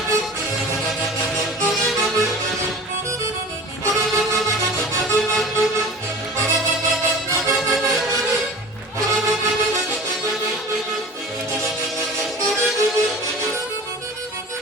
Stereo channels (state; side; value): normal; both; correlation 0.38